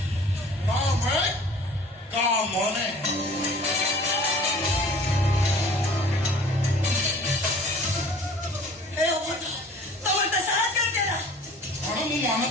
କାମେ କାମନେ ଏ ଅବଧ ତମର ତ ସାହସ କରିଦେଲା କଣ ମୁଁ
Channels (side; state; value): both; normal; correlation 0.48